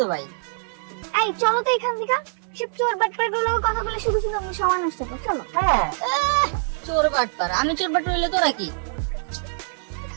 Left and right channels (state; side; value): silent; left; digital silence